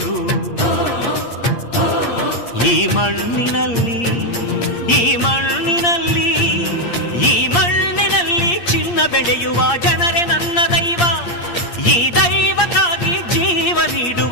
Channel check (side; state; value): right; late; 8.6 ms